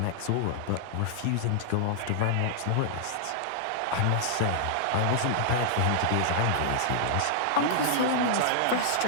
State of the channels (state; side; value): different; both; correlation -0.01